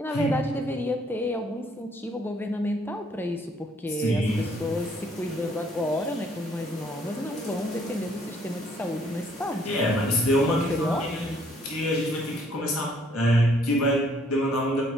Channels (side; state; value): both; normal; correlation 0.65